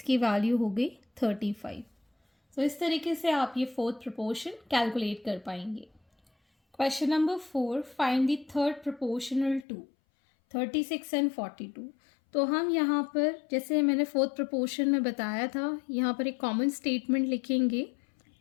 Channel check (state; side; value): drops out; right; at 9.7 s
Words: की value हो गई 35. तो इस तरीके से आप ये फोर्थ प्रोपोर्शन कैलकुलेट कर पाएंगे. Question number 4, find the third proportional to 36 and 42. तो हम यहाँ पर जैसे मैंने फोर्थ प्रोपोर्शन में बताया था, यहाँ पर एक कॉमन स्टेटमेंट लिखेंगे,